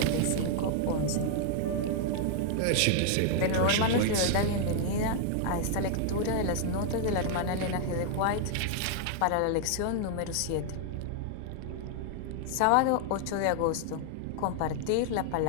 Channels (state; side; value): different; both; correlation 0.00